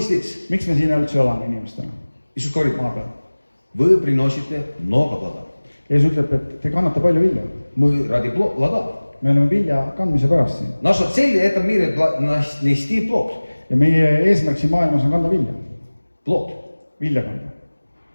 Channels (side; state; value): both; inverted; correlation -1.00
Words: Miks me siin üldse oleme inimestena Иисус говорит, maa peal? вы приносите много плода. Jeesus ütleb, et te kannate palju vilja. Мы ради плода. Me oleme vilja kandmise pärast siin. Наша цель в этом мире нести плод. Ja meie eesmärk siin maailmas on kanda vilja. Плод. Vilja kanda.